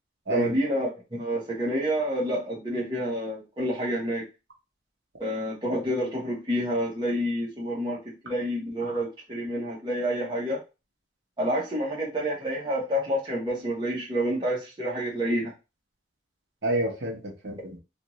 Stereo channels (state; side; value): normal; both; correlation 0.46